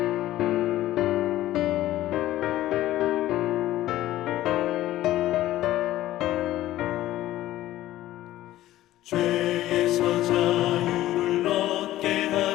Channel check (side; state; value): right; quieter; 14.7 dB